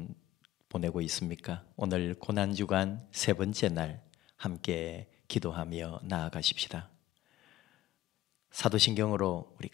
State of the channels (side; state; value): right; quieter; 14.7 dB